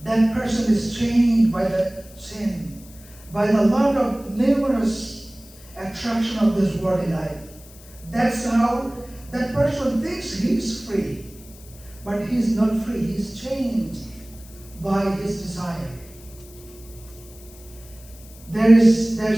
that person is chained by the sin, by the lot of numerous attraction of this worldly life. That's how that person thinks he's free, but he's not free. He's chained by his desire. There's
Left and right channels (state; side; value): noise; left; hiss, 22 dB below the sound